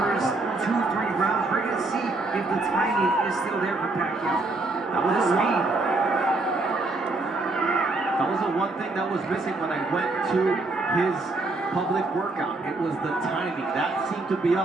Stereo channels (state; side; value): quieter; left; 3.2 dB